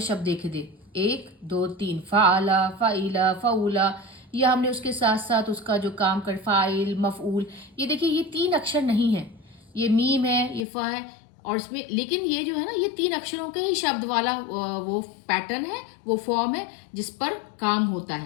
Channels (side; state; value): right; drops out; at 10.6 s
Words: शब्द देखे थे, 1 2 3 फ़ाअला फ़ाइला फ़ऊला। या हमने उसके साथ साथ उसका जो काम कर फ़ाइल मफ़ऊल, ये देखिए ये 3 अक्षर नहीं है, ये मीम है, ये फ़ा है और इसमें, लेकिन ये जो है ना ये 3 अक्षरों के ही शब्द वाला वो पैटर्न है, वो फॉर्म है जिस पर काम होता